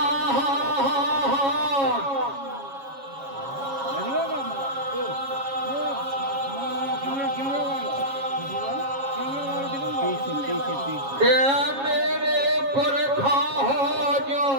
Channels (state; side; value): late; left; 7.3 ms